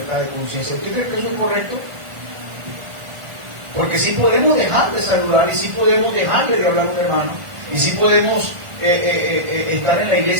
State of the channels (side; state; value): left; late; 1.4 ms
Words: de conciencia. ¿Usted cree que eso es correcto? Porque sí podemos dejar de saludar, y sí podemos dejar de hablar a un hermano, y sí podemos estar en la